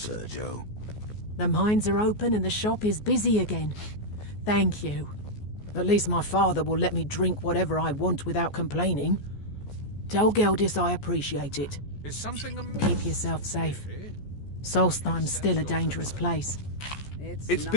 The mines are open and the shop is busy again. Thank you. At least my father will let me drink whatever I want without complaining. Tell Geldis I appreciate it. Is something amiss? Keep yourself safe. Solstheim's still a dangerous place. It's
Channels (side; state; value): right; late; 14 ms